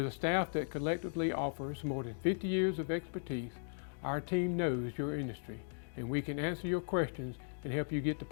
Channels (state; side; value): silent; right; digital silence